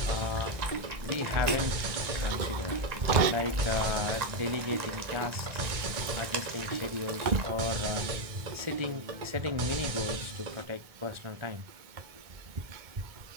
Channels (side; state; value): left; late; 1.6 ms